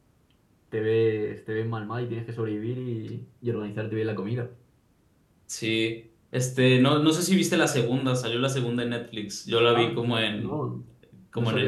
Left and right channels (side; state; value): both; identical; correlation 1.00